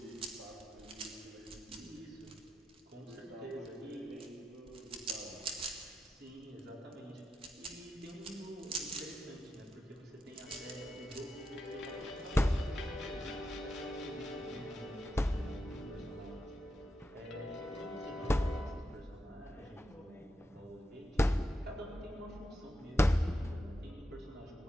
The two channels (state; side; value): normal; both; correlation 0.87